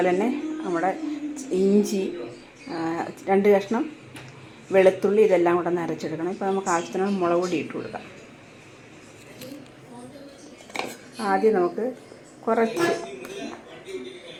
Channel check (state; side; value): identical; both; correlation 1.00